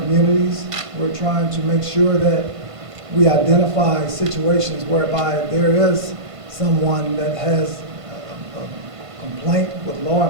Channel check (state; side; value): late; left; 1.5 ms